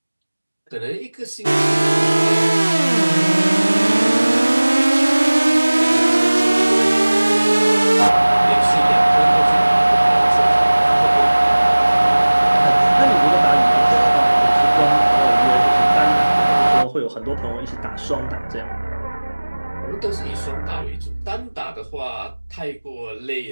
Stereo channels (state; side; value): inverted; both; correlation -1.00